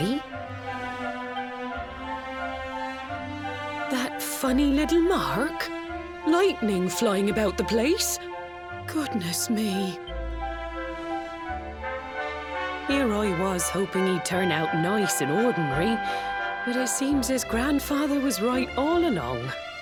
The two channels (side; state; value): both; identical; correlation 1.00